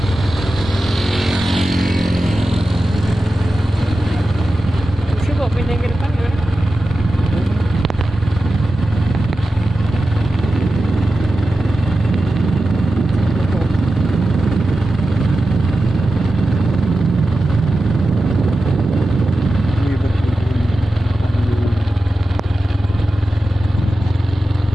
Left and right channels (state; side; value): normal; both; correlation 0.93